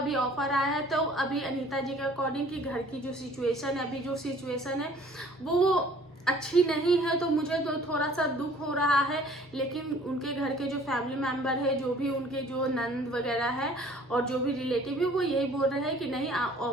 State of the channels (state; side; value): normal; both; correlation 0.53